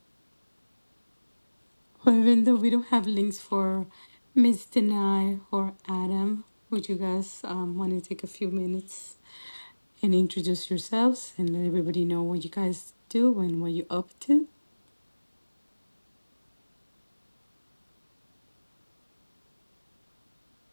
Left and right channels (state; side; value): inverted; both; correlation -1.00